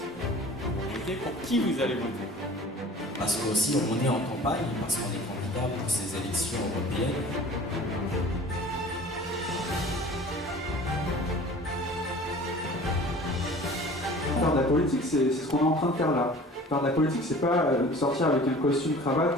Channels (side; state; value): both; normal; correlation 0.44